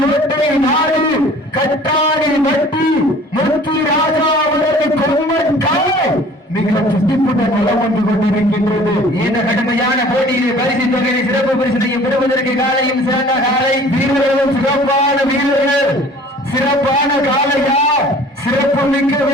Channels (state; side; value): normal; both; correlation 0.49